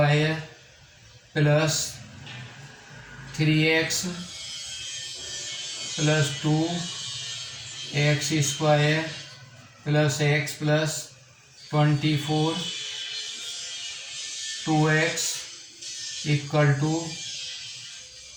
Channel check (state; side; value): identical; both; correlation 1.00